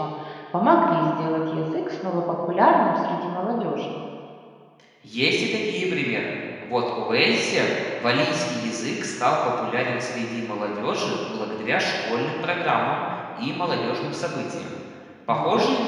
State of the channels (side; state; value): both; identical; correlation 1.00